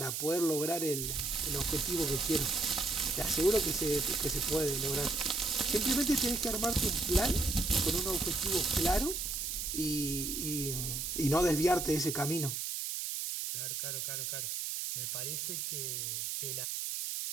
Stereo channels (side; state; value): right; noise; hiss, 3 dB below the sound